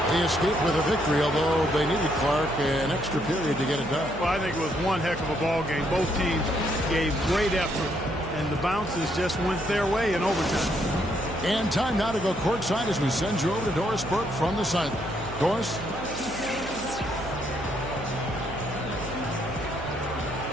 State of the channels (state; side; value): noise; right; hum, 14 dB below the sound